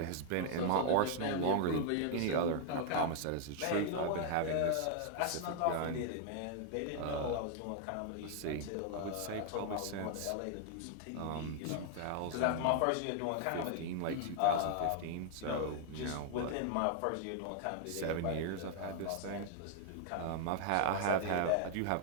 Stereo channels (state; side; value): different; both; correlation 0.00